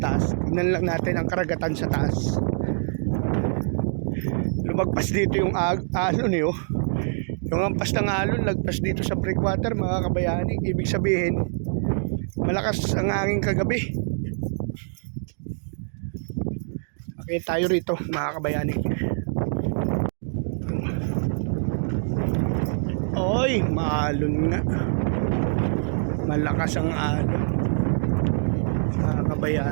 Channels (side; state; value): left; silent; digital silence